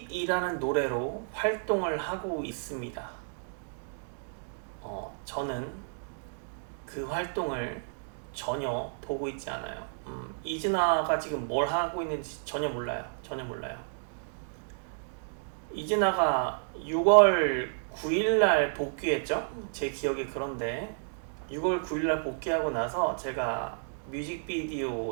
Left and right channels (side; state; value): left; silent; digital silence